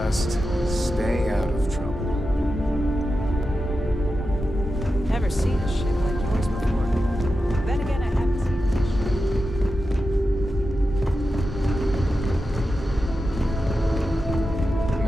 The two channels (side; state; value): both; normal; correlation 0.91